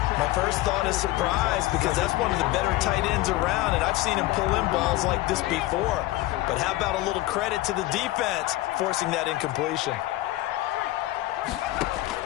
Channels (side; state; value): right; quieter; 17.3 dB